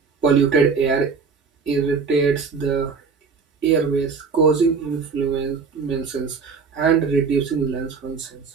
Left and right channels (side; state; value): left; quieter; 5.3 dB